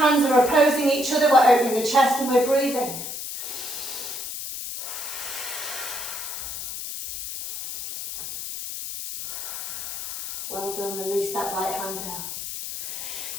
are opposing each other, we're opening the chest and we're breathing. Well done, release that right hand down.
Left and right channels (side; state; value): left; noise; hiss, 7 dB below the sound